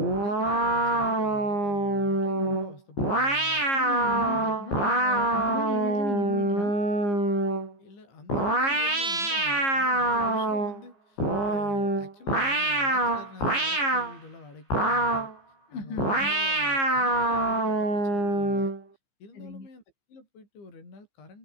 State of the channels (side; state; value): right; late; 15 ms